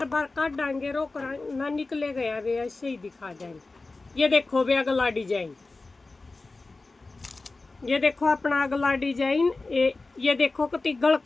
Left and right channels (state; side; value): quieter; right; 3.5 dB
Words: बार काट डांगे रोक ना निकले गया वे, ऐसे ही दिखा जाएंगे। ये देखो बे अगला डिजाइन, ये देखो अपना अगला डिजाइन। ये देखो कति गल